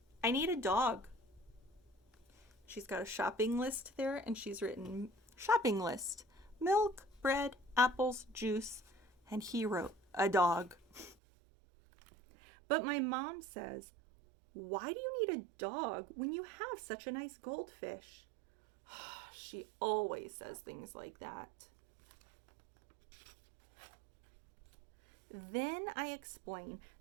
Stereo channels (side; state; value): left; drops out; at 11.2 s